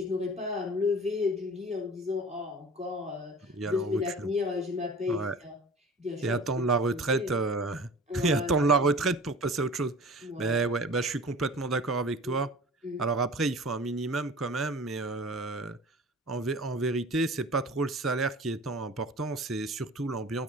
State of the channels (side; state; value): both; normal; correlation 0.41